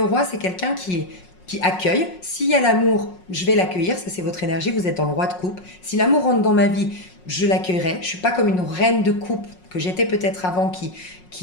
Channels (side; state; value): right; late; 5.5 ms